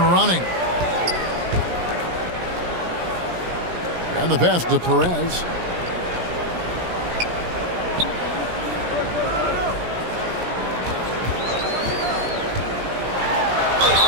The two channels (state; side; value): late; left; 17 ms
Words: And the pass to Perez.